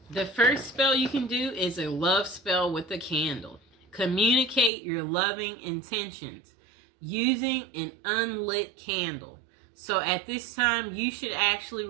the first spell you can do is a love spell with a candle. Communicate your loving intentions using an unlit candle. So at this time, you should actually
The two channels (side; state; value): left; drops out; at 4.7 s